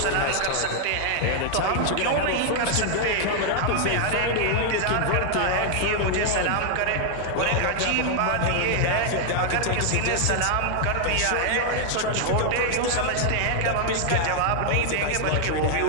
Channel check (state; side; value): different; both; correlation 0.00